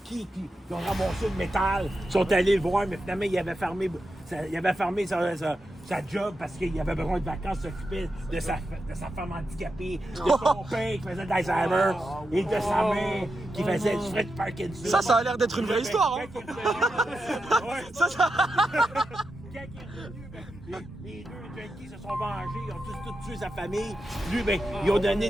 qui ont ramassé le métal. Ils sont allés le voir, mais finalement, il avait fermé sa job parce qu'il avait besoin de vacances, s'occuper de sa femme handicapée, de son père qui faisait d'Alzheimer et de sa mère qui faisait du Fred Parkinson. Ça a l'air d'être une vraie histoire, hein. Quand il est revenu, les deux junkies se sont vengés, ils ont tous tué sa famille. Lui, ben, ils ont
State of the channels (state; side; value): normal; both; correlation 0.88